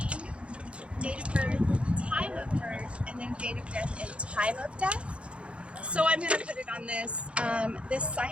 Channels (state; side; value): late; left; 0.059 ms